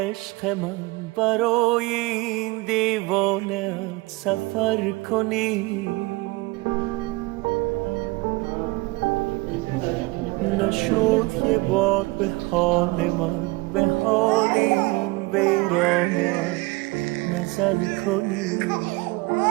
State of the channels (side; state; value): left; quieter; 23.5 dB